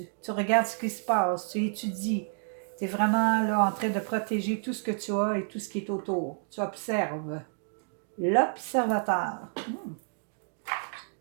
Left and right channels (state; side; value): silent; left; 58 dB below the other